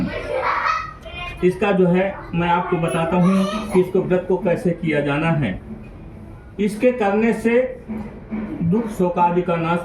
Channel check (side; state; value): both; identical; correlation 1.00